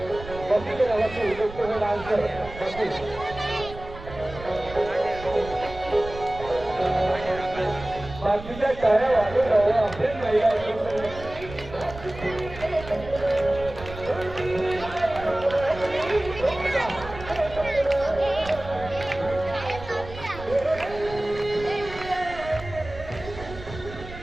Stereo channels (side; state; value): right; noise; rumble, 13 dB below the sound